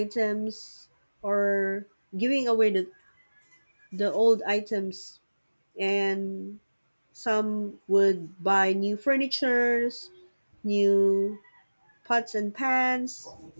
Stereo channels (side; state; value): both; inverted; correlation -1.00